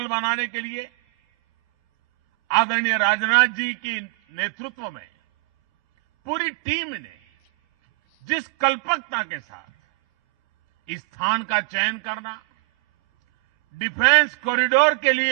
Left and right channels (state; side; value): quieter; left; 34.5 dB